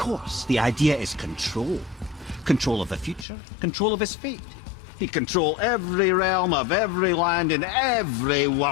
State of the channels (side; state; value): right; drops out; at 3.2 s